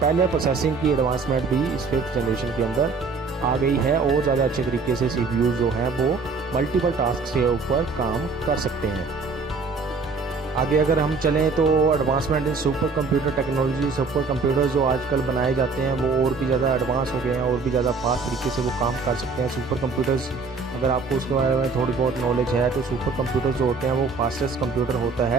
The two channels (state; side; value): quieter; left; 4.4 dB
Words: प्रोसेसिंग की एडवांसमेंट भी इस 5th जनरेशन के अंदर आ गई है और ज़्यादा अच्छे तरीके से सीपीयू जो हैं वो मल्टीपल टास्क के ऊपर काम कर सकते हैं। आगे अगर हम चलें तो advancement in super computer technology, super computer जो आजकल बनाए जाते हैं वो और भी ज़्यादा एडवांस हो गए हैं और भी ज़्यादा फास्ट तरीके से वो काम कर सकते हैं। सुपर कंप्यूटर्स अगर आपको उसके बारे में थोड़ी बहुत नॉलेज है तो सुपर कंप्यूटर्स जो होते हैं वो फास्टेस्ट कंप्यूटर होता